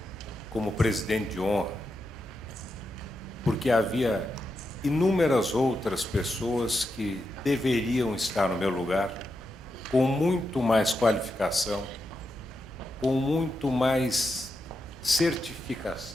como presidente de honra, porque havia inúmeras outras pessoas que deveriam estar no meu lugar, com muito mais qualificação, com muito mais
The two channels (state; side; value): normal; both; correlation 0.86